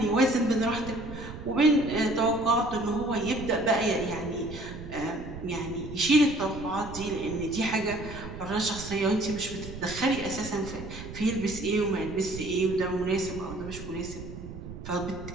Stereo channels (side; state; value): right; noise; rumble, 11 dB below the sound